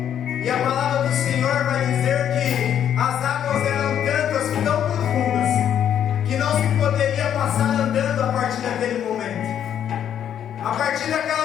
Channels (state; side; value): quieter; right; 9.6 dB